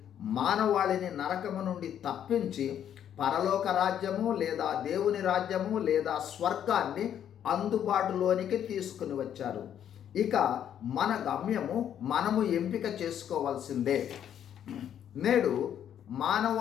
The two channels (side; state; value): right; quieter; 9.7 dB